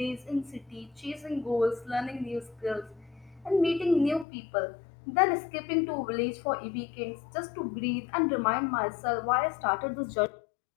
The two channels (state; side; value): drops out; right; at 4.2 s